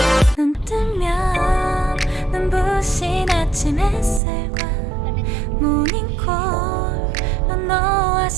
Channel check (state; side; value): drops out; left; at 4.2 s